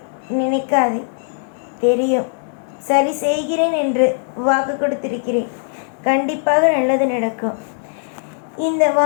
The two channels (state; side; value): silent; right; digital silence